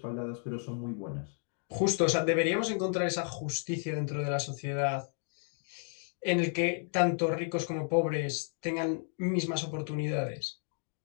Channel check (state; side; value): silent; right; 56 dB below the other